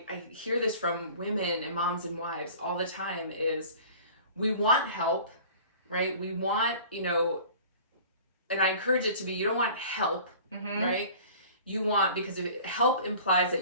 hear this from women and moms and wives all the time, is we want help, right? We want, and I encourage it to be, you don't want help, right? You want, because help implies that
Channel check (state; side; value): inverted; both; correlation -0.45